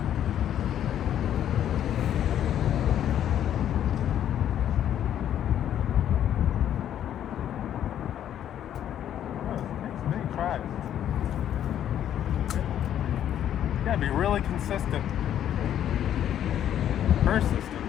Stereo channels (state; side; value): quieter; right; 10.5 dB